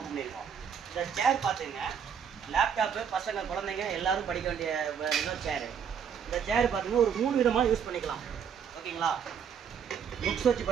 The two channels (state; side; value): quieter; left; 7.6 dB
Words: பண்ணியிருக்கோம். இந்த சேர் பார்த்துங்க, லேப்டாப்பு பசங்க குழந்தைங்க எல்லோரும் படிக்க வேண்டிய சேரு. இந்த சேர் பார்த்திங்கன்னா ஒரு 3 விதமாக யூஸ் பண்ணிக்கலாம். ஓகேங்களா? புக்ஸ் வச்சு